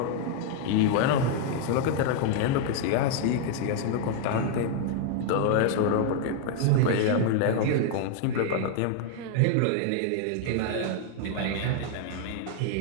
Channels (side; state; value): both; different; correlation 0.00